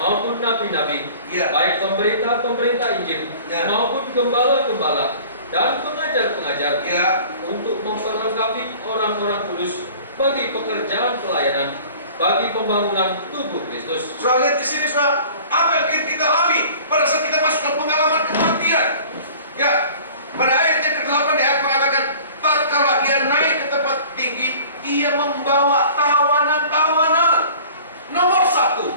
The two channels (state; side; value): inverted; both; correlation -0.46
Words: nabi-nabi, Ya. baik pemberita-pemberita Injil Ya. maupun gembala-gembala dan pengajar-pengajar, Ya. untuk memperlengkapi orang-orang kudus bagi pekerjaan pelayanan, bagi pembangunan tubuh Kristus. Saudara lihat di sini, saudara, apa yang kita alami pada saat kita masuk ke pengalaman kematian. Ya, pada ayat yang ke-8 dia mengatakan, tatkala ia naik ke tempat tinggi, ia membawa tawanan-tawanan. Nomor satu,